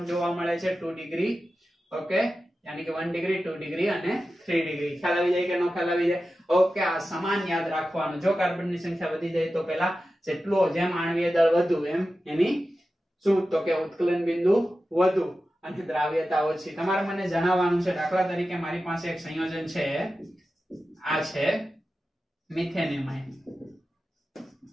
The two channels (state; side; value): normal; both; correlation 0.93